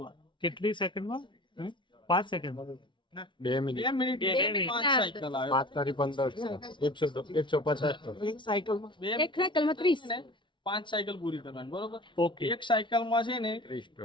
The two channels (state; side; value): late; right; 0.24 ms